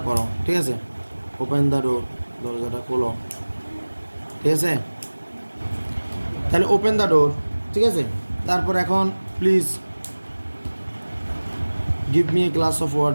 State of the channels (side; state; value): both; inverted; correlation -1.00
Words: করো। ঠিক আছে? ওপেন দ্য ডোর, দরজাটা খোলো। ঠিক আছে? তাহলে ওপেন দ্য ডোর। ঠিক আছে? তারপর এখন please give me a glass of